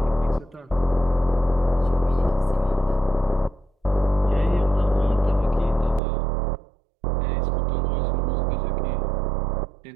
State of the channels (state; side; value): drops out; left; at 6.0 s